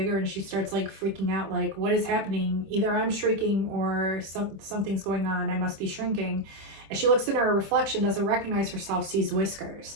and she starts like freaking out, like, what is happening? Either I'm shrinking or something's going on. I must be shrinking. And she looks in her reflection, doesn't recognize herself, sees whiskers.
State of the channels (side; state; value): left; late; 25 ms